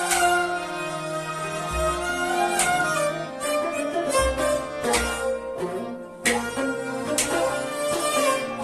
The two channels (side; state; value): both; identical; correlation 1.00